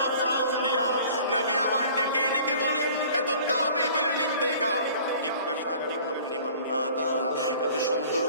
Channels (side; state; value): both; inverted; correlation -0.48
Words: দিয়া। নবী আমার ডেকে ডেকে বলে এত দামি বিল্ডিং দেখা জিজ্ঞাসা করলাম লিমান হাদা, এত সুন্দর